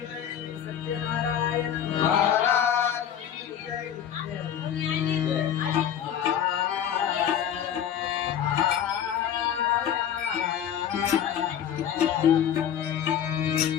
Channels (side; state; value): right; quieter; 9.5 dB